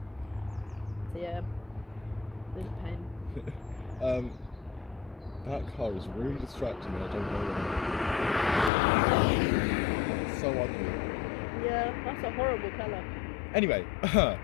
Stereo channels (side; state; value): right; drops out; at 8.7 s